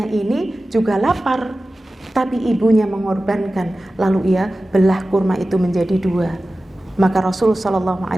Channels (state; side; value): normal; both; correlation 0.95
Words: ini juga lapar, tapi ibunya mengorbankan, lalu ia belah kurma itu menjadi 2. Maka Rasulullah Shallallahu